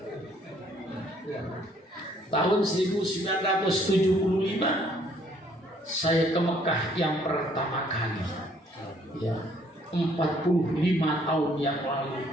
Tahun 1975 saya ke Mekah yang pertama kali. Ya, 45 tahun yang lalu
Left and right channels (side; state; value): both; normal; correlation 0.63